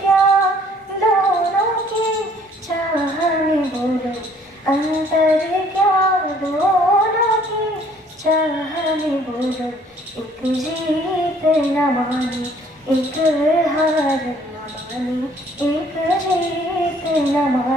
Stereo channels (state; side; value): normal; both; correlation 0.59